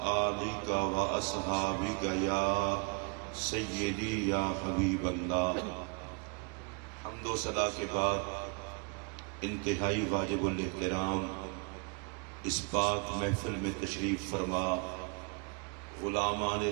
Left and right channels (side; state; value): left; quieter; 34.8 dB